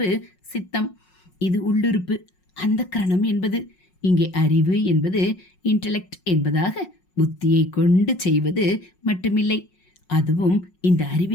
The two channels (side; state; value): right; late; 5.4 ms